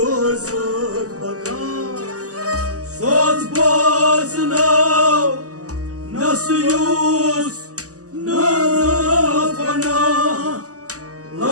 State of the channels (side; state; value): left; late; 0.66 ms